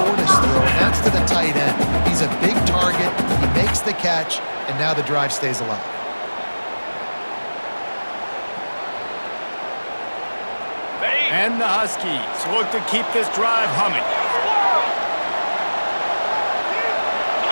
throw, and that's to the tight end. He's a big target. He makes the catch, and now the drive stays alive. And the Huskies look to keep this drive humming.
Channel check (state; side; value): inverted; both; correlation -1.00